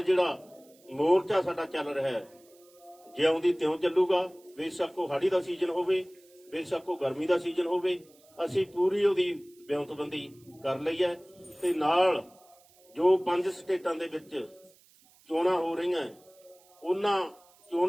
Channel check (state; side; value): noise; right; hiss, 29 dB below the sound